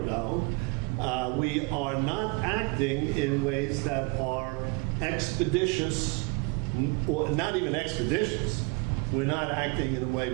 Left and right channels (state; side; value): quieter; left; 27.6 dB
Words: ago. We are not acting in ways that are expeditious, or not even expeditious. We're not acting in a way